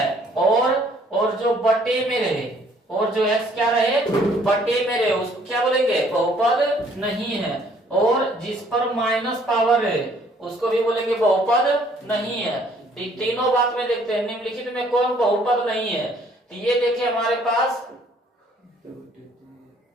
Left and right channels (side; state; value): both; normal; correlation 0.61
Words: और जो बटे में रहे, और जो x क्या रहे? बटे में रहे, उसको क्या बोलेंगे? बहुपद नहीं है। और जिस पर माइनस पावर है उसको भी बोलेंगे बहुपद नहीं है। तो तीनों बात में देखते हैं निम्नलिखित में कौन बहुपद नहीं है। तो ये देखिए हमारे पास